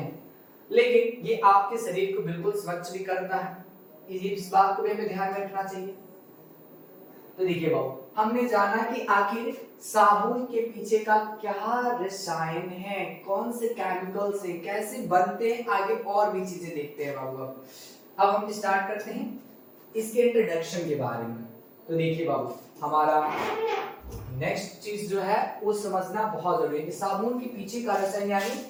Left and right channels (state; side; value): identical; both; correlation 1.00